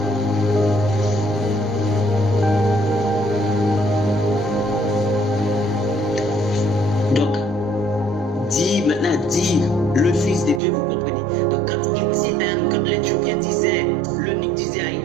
dire le Fils de Dieu, vous comprenez. Donc quand l'Éthiopien disait, l'eunuque disait à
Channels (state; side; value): drops out; left; at 10.6 s